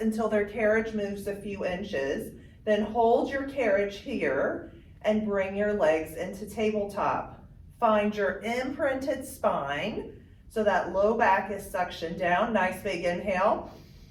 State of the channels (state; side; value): identical; both; correlation 1.00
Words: their carriage moves a few inches. Then hold your carriage here and bring your legs into tabletop. Find your imprinted spine so that low back is suctioned down. Nice big inhale.